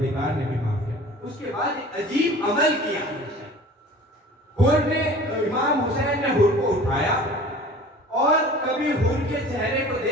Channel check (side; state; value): both; normal; correlation 0.43